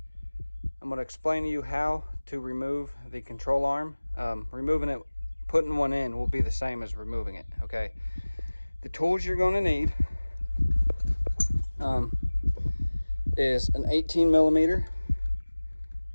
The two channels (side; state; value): both; inverted; correlation -1.00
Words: going to explain to you how to remove the control arm. Removing it, putting one in will be the same as removing it. Okay, the tools you're going to need is an 18 millimeter.